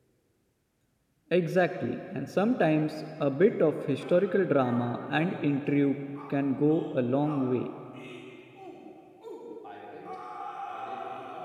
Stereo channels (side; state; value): both; identical; correlation 1.00